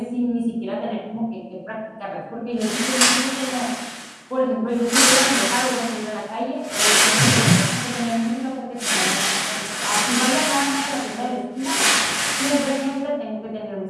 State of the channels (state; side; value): identical; both; correlation 1.00